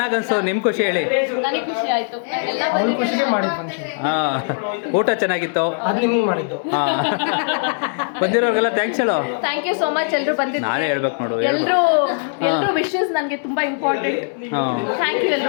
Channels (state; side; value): silent; right; digital silence